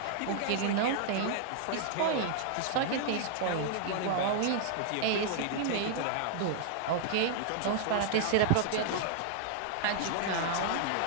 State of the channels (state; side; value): different; both; correlation -0.01